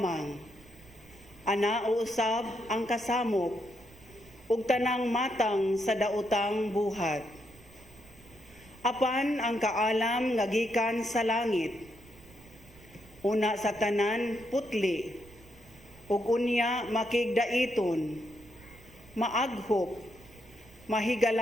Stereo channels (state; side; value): noise; right; rumble, 24 dB below the sound